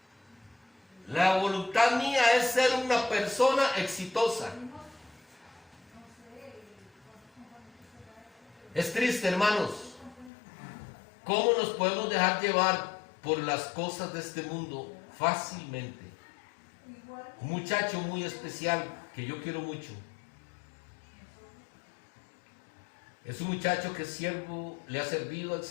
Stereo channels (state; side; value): drops out; right; at 10.3 s